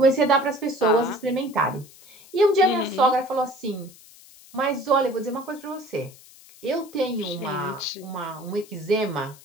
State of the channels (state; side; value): noise; left; hiss, 23 dB below the sound